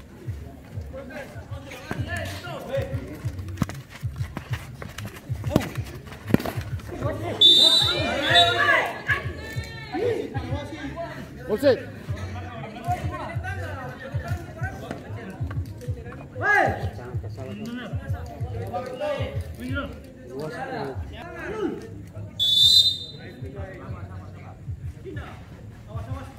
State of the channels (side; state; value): both; identical; correlation 1.00